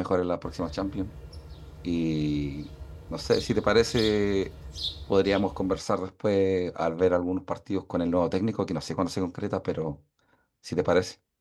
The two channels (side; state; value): both; identical; correlation 1.00